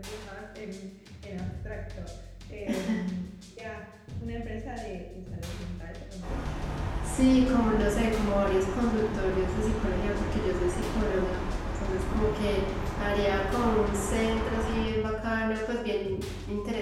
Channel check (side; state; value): both; identical; correlation 1.00